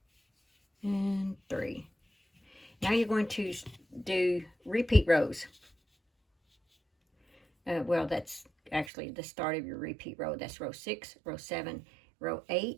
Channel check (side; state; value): left; drops out; at 8.9 s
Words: and 3. Now you're going to do repeat rows. Well, that's actually the start of your repeat row. That's row 6, row 7, row